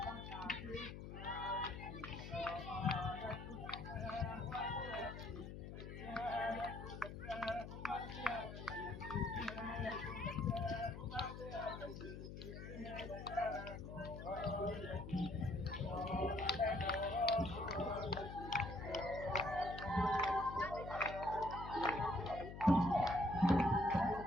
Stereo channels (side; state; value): left; noise; hum, 9 dB below the sound